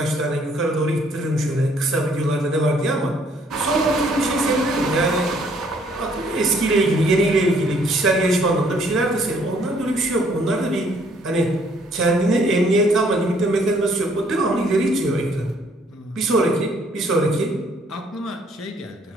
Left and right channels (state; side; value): normal; both; correlation 0.64